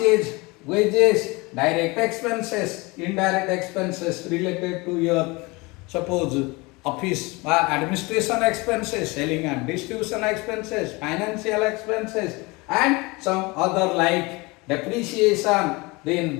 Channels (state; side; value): quieter; right; 25.0 dB